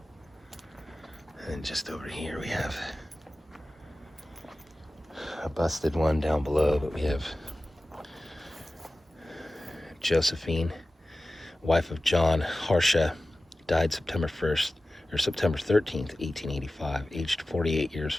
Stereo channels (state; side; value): normal; both; correlation 0.96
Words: And just over here we have a busted one down below, but we have Josephine, wife of John Harsha, died September 1st, or September 13th, 1885, aged 48 years,